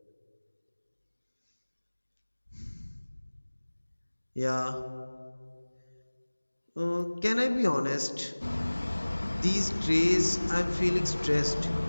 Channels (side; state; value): both; inverted; correlation -1.00